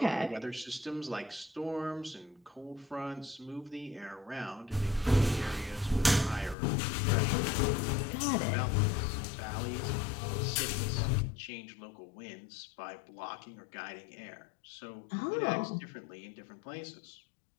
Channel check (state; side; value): drops out; right; at 6.6 s